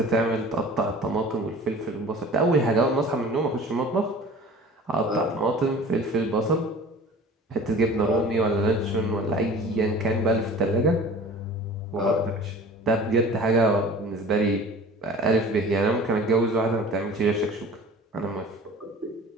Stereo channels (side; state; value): both; normal; correlation 0.43